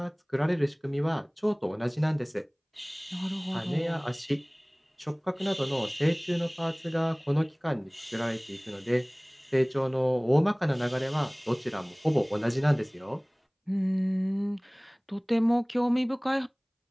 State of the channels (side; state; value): both; identical; correlation 1.00